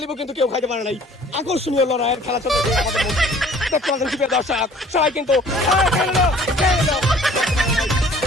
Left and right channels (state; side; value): normal; both; correlation 0.53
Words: নাই। আকর্ষণীয় লড়াইয়ের খেলা চলতেছে আমাদের মধ্যে। দেখতে পাচ্ছেন সুপ্রিয় দর্শক সবাই কিন্তু